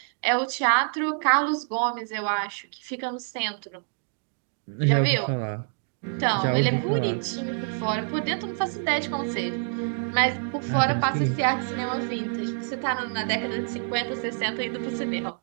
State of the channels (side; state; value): left; silent; digital silence